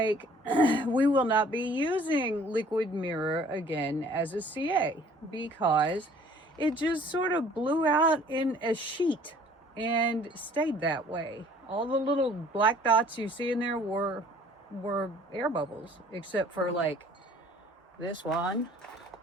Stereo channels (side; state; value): both; normal; correlation 0.54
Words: we will not be using liquid mirror again as a CA because it just sort of blew out in a sheet and stayed that way. All the little black dots you see in there were air bubbles, except for like this one.